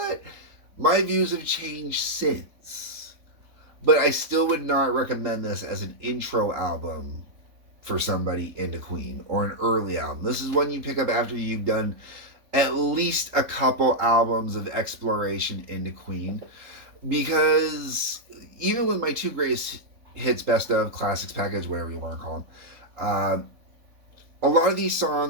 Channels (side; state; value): left; late; 3.8 ms